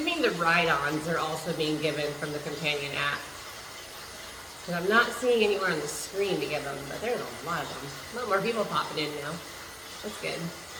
the ride-ons are also being given from the companion app. Because I'm not seeing anywhere on the screen to give them, but there's a lot of them. A lot more people popping in now. That's good.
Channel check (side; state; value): both; identical; correlation 1.00